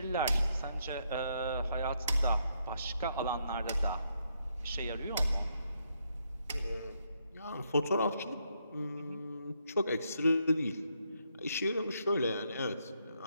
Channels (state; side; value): inverted; both; correlation -0.76